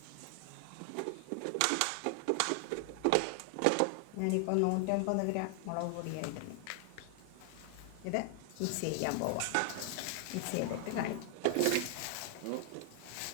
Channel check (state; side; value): different; both; correlation 0.00